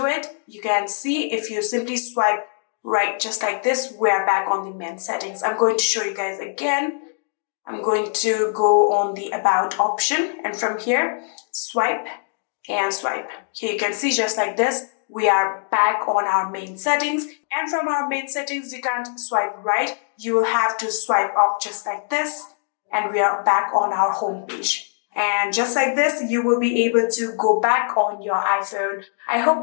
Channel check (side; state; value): right; silent; digital silence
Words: it. You can see if you simply swipe right just like this, we're back on the main settings. I'm going to show you guys again. I'm going to go on the about option, and from here, swipe and swipe. Here you can see just like this, we are back on our main settings. And from our main settings, you can't swipe right. You will have to swipe up just like this, and we are back on our home page. And just like this, you will be able to go back on your iPhone. I hope